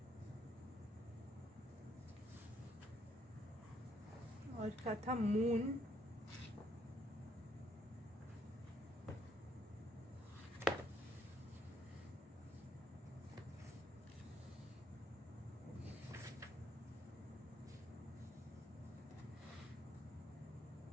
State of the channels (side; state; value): both; normal; correlation 0.71